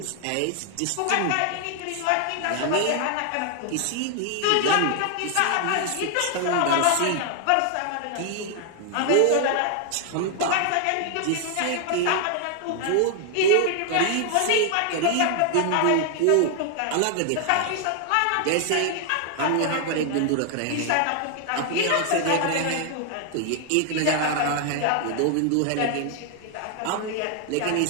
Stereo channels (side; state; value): both; different; correlation 0.00